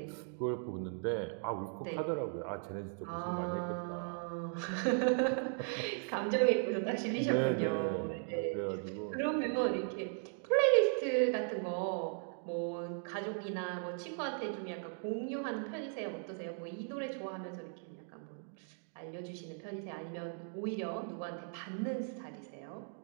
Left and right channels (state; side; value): silent; left; 53 dB below the other